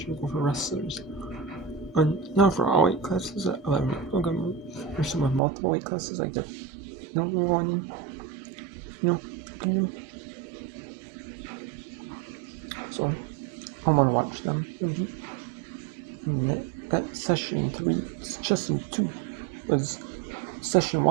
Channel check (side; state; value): left; drops out; at 5.4 s